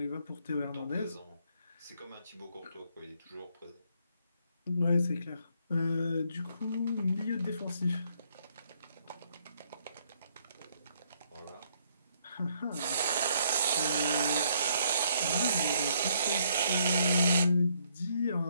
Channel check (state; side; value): inverted; both; correlation -0.70